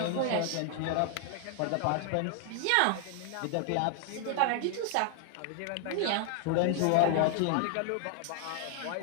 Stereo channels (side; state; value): both; different; correlation 0.00